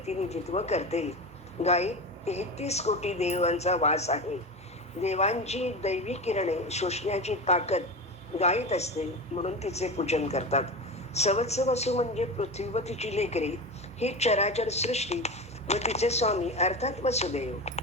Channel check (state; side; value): normal; both; correlation 0.25